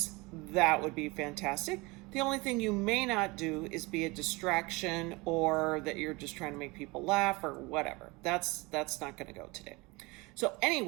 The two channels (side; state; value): left; quieter; 24.7 dB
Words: that would be fantastic. The only thing you may not do is be a distraction or that you're just trying to make people laugh or whatever. That's not going to go today. So